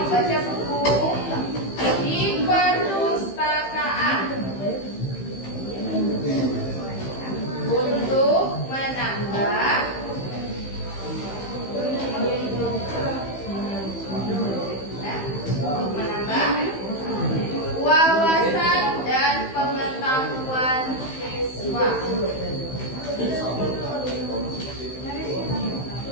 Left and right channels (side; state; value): right; late; 15 ms